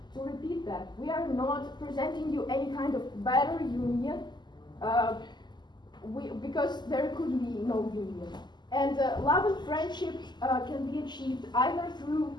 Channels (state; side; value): late; right; 0.21 ms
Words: to repeat that, we are not presenting you any kind of better union, because there could be no union. And love and friendship can be achieved either through